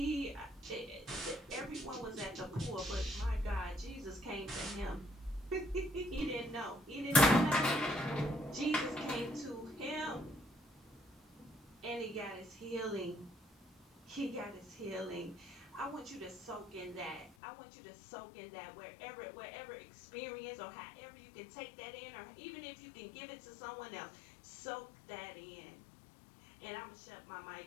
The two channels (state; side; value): drops out; right; at 17.4 s